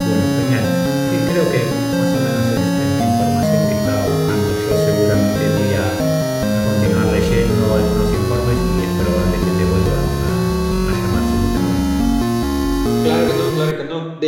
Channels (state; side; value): identical; both; correlation 1.00